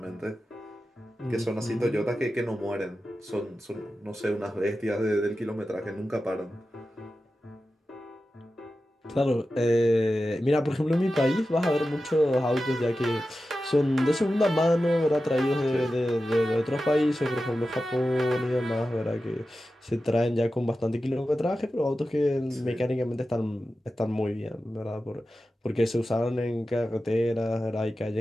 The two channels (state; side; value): normal; both; correlation 0.93